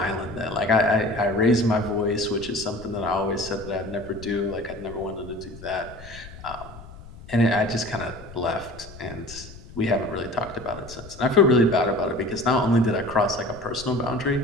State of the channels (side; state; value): left; noise; rumble, 17 dB below the sound